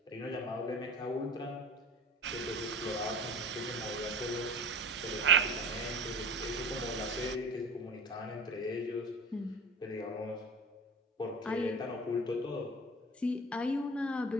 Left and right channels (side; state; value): both; normal; correlation 0.35